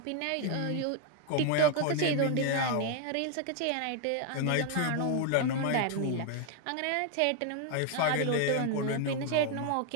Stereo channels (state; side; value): different; both; correlation 0.01